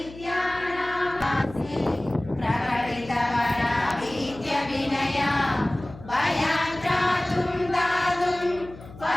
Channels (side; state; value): left; noise; hum, 17 dB below the sound